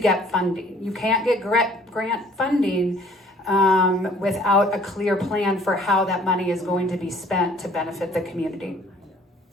funding. You can't get grant funding without a clear plan for how that money is going to be spent to benefit the community.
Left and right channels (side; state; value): both; normal; correlation 0.56